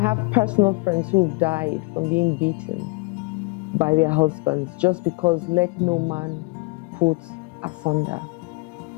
personal friends who've died from being beaten by their husbands just because let no man put asunder.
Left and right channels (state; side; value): quieter; right; 26.8 dB